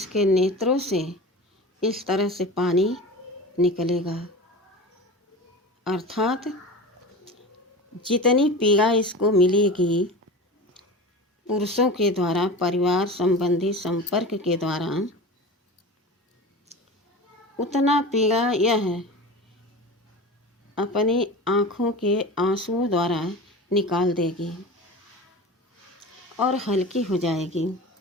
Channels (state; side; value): normal; both; correlation 0.32